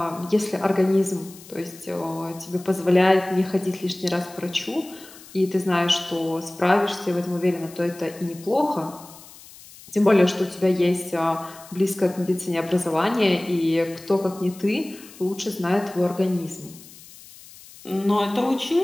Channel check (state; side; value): noise; left; hiss, 20 dB below the sound